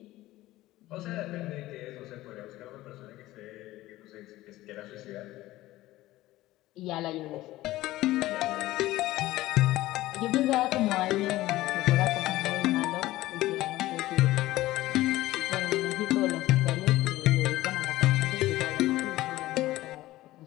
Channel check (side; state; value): right; quieter; 16.7 dB